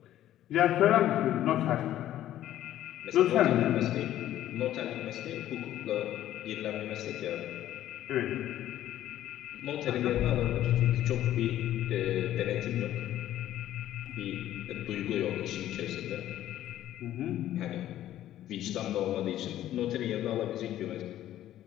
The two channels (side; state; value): right; quieter; 12.8 dB